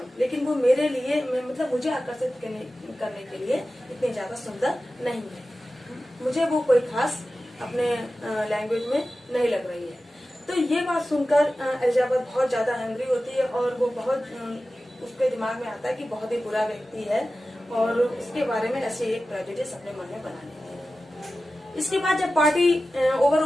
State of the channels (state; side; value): normal; both; correlation 0.94